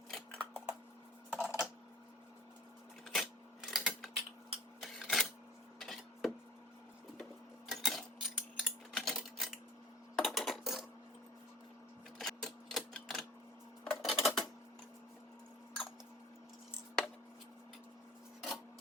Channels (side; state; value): both; normal; correlation 0.40